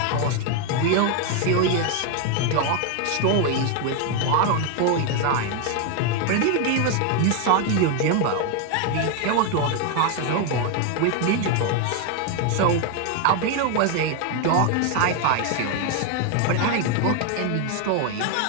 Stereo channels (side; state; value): both; different; correlation 0.01